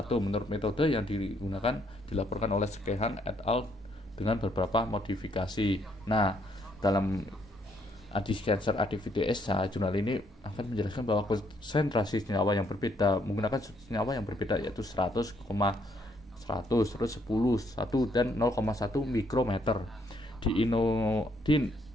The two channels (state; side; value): normal; both; correlation 0.70